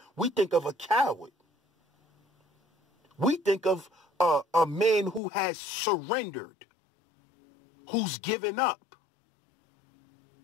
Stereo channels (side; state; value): right; drops out; at 5.2 s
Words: we think of a coward. We think of a man who has surrendered, who's given up.